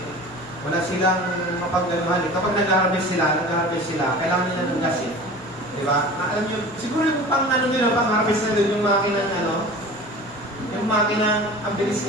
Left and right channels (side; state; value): both; normal; correlation 0.38